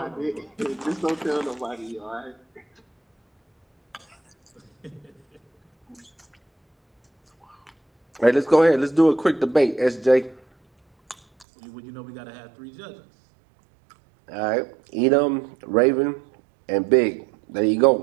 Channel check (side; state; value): left; drops out; at 11.5 s